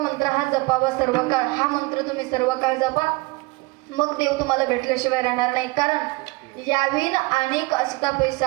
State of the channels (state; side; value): quieter; left; 23.5 dB